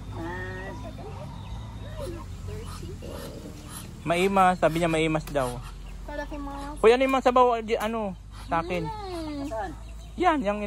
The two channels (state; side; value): identical; both; correlation 1.00